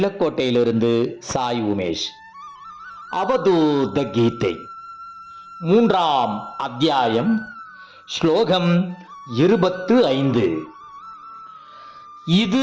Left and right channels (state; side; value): identical; both; correlation 1.00